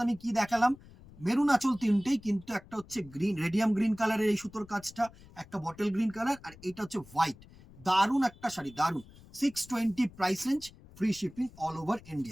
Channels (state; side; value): noise; left; rumble, 22 dB below the sound